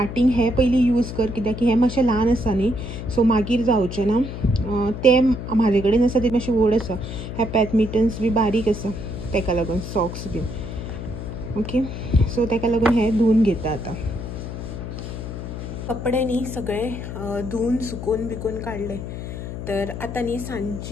हे पयलीं यूज कर कित्याक की हे मातशें ल्हान आसा न्ही, सो मागीर जावचें ना. ते म्हाजे कडेन आसा ते मातशे व्हड आसा. हे पॅथ मिटन्स बी बारीक आसा तेका लागून सॉक्स बीन. ओके, सो तेका लागून हे धुवन घेता आतां. कपडे न्ही सगळे धुवन सुकोवन बिकोवन काडले. तर आतां न्ही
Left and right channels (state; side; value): noise; left; hum, 7 dB below the sound